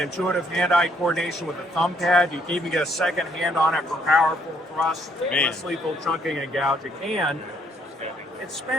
hand-eye coordination with a thumb pad. You can even get a second hand on it for powerful thrust, less lethal chunking and gouging. And it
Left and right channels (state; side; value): normal; both; correlation 0.68